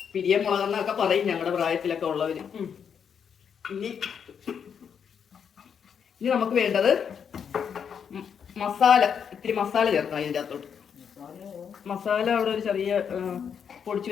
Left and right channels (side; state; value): right; quieter; 7.4 dB